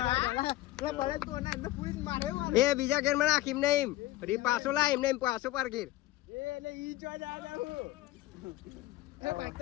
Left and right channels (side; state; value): right; quieter; 16.0 dB